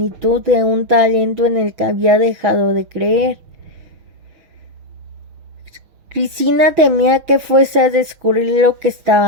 de un talento en el que había dejado de creer. Cristina temía que fuese a descubrir lo que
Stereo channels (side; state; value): left; late; 6.4 ms